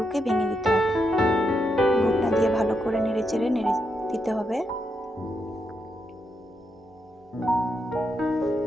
ভেঙে দিতে হবে। ঘুটনা দিয়ে ভালো করে নেড়ে দিতে হবে।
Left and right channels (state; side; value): normal; both; correlation 0.82